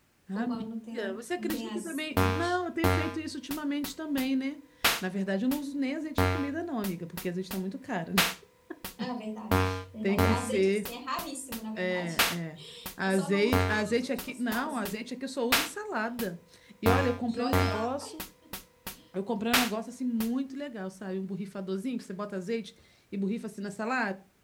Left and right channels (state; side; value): identical; both; correlation 1.00